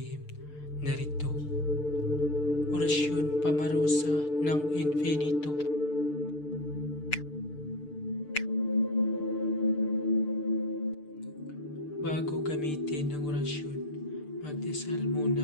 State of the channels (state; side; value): late; right; 6.7 ms